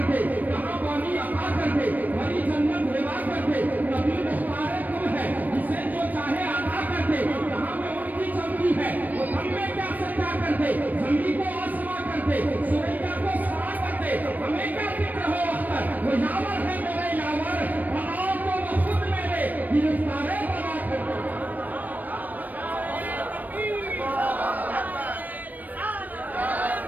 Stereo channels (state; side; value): late; left; 0.083 ms